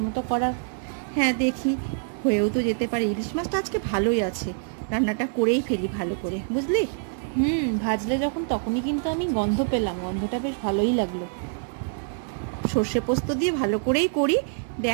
করার। হ্যাঁ, দেখি হয়েও তো যেতে পারে। ইলিশ মাছটা আজকে ভালোই আছে, রান্নাটা করেই ফেলি ভালো করে, বুঝলি? ভাজলে যখন তখনই কিন্তু আমি গন্ধ পেলাম, গন্ধটা বেশ ভালোই লাগলো। সর্ষে পোস্ত দিয়ে ভালো করেই করি,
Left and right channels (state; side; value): silent; left; digital silence